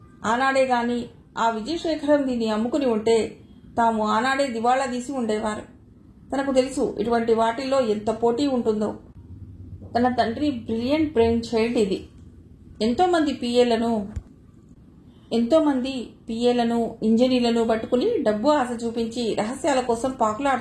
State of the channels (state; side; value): identical; both; correlation 1.00